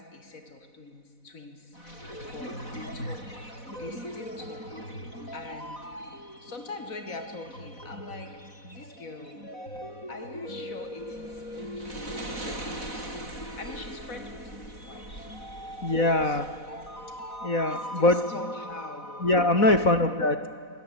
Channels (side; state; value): right; late; 4.1 ms